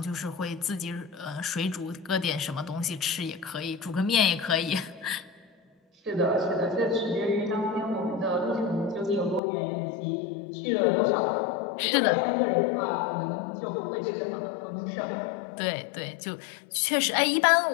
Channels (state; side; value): drops out; right; at 9.4 s